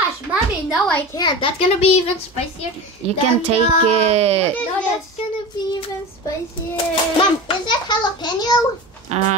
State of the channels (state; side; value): normal; both; correlation 0.29